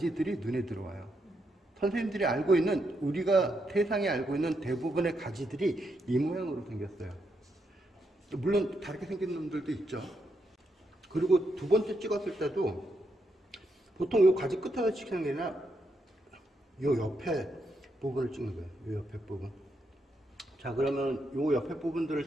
눈에 들어와요. 선생님들이 알고 있는, 우리가 세상에 알고 있는 대부분의 가지들이 이 모양으로 생겼어요. 물론 다르게 생긴 놈들도 있죠. 그리고 두 번째 찍었을 때도 보통 요 가지 끝에서 찍는 게 아니라 요 옆에 부분을 찍는 거예요. 요 옆에 부분. 자, 그러면 요 옆에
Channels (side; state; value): both; normal; correlation 0.80